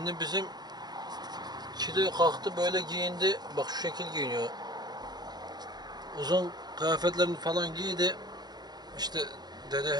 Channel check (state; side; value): late; left; 0.20 ms